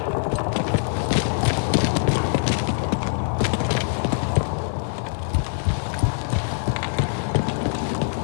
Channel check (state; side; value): silent; right; digital silence